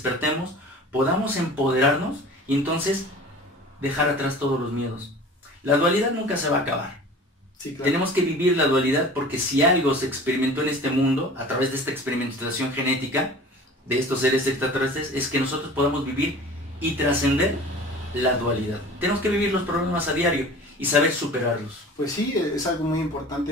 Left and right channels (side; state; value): both; normal; correlation 0.41